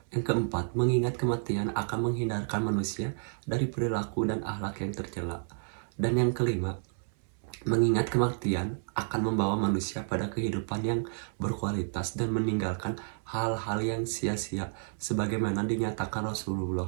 Yang keempat, mengingat kematian akan menghindarkan manusia dari perilaku dan akhlak yang tercela. Dan yang kelima, mengingat kematian akan membawa manusia pada kehidupan yang berkualitas dan meninggalkan hal-hal yang sia-sia sebagaimana dinyatakan Rasulullah.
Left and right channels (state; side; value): silent; left; 57 dB below the other